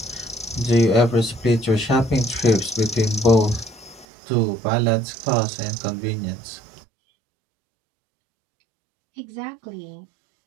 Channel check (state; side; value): drops out; left; at 4.0 s